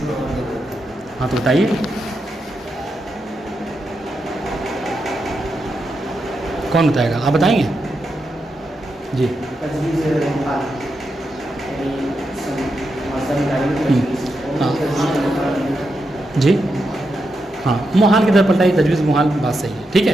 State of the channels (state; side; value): normal; both; correlation 0.85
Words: ہاں تو بتائیے. کون بتائے گا؟ آپ بتائیں گے؟ جی جی ہاں، محال کی طرف پلٹائی، تجویز محال، بات صحیح ہے. ٹھیک